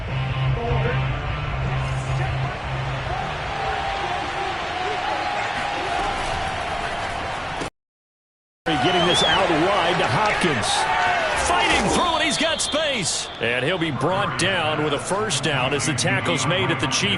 Getting this out wide to Hopkins. Fighting through, and he's got space. And he'll be brought down with a 1st down as the tackle's made at the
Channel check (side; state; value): both; identical; correlation 1.00